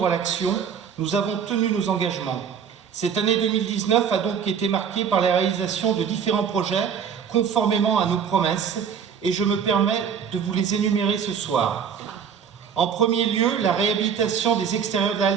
à l'action, nous avons tenu nos engagements. Cette année 2019 a donc été marquée par la réalisation de différents projets conformément à nos promesses et je me permets de vous les énumérer ce soir. En premier lieu, la réhabilitation des extérieurs de la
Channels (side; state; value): left; quieter; 7.3 dB